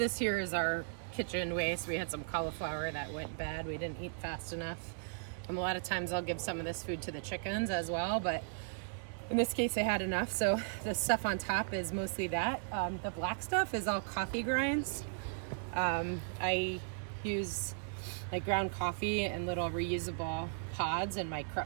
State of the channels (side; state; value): left; silent; digital silence